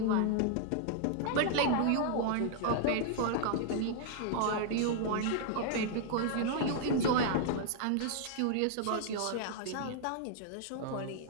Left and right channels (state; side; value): different; both; correlation 0.00